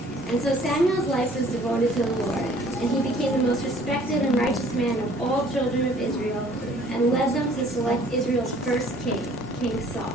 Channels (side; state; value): both; normal; correlation 0.56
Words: And so Samuel's life was devoted to the Lord, and he became the most respected and righteous man of all children of Israel, and led them to select Israel's first king, King Saul.